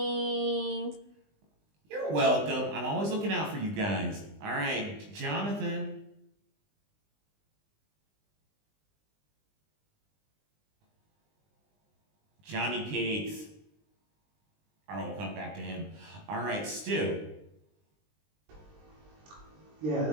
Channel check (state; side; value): late; left; 20 ms